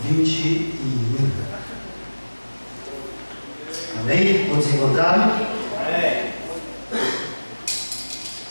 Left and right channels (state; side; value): inverted; both; correlation -1.00